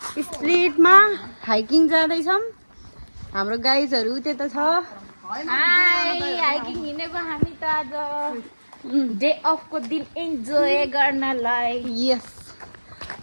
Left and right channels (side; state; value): both; inverted; correlation -1.00